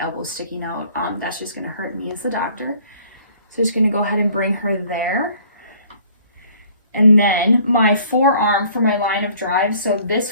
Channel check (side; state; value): both; inverted; correlation -0.56